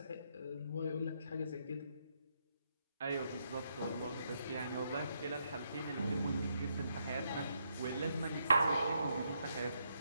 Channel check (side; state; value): both; inverted; correlation -0.77